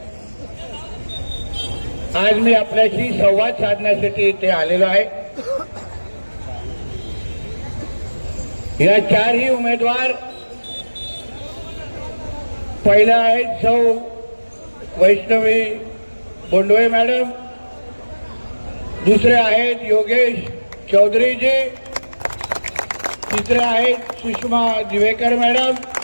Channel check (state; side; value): inverted; both; correlation -1.00